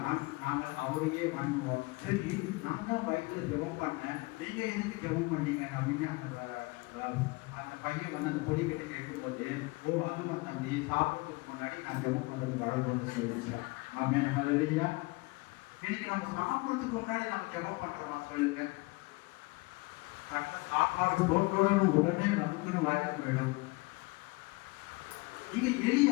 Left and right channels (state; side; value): quieter; right; 25.0 dB